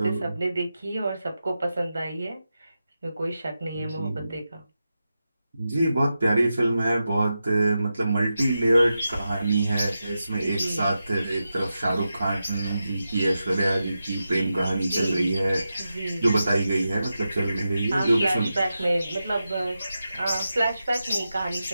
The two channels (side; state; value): both; inverted; correlation -0.90